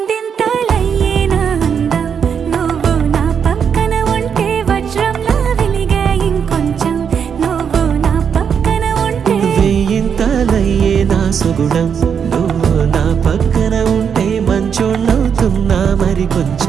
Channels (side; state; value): left; quieter; 7.2 dB